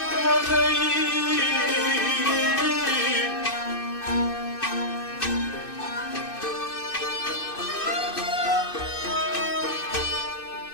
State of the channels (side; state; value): right; late; 2.6 ms